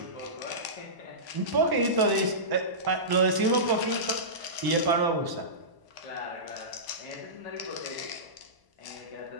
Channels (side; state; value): left; late; 1.0 ms